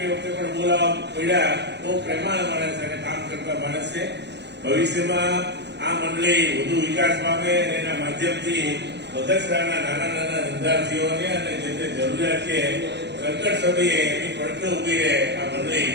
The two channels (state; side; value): late; left; 0.50 ms